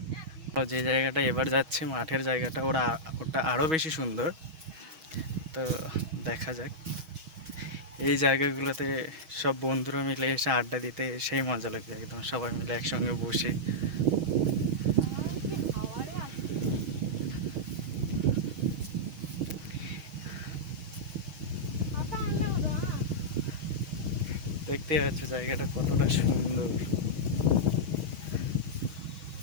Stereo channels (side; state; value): left; late; 6.3 ms